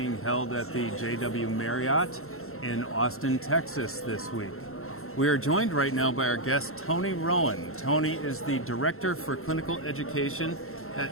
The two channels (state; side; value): late; right; 0.62 ms